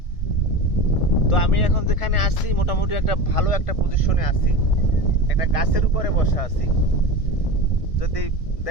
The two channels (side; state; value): right; late; 1.6 ms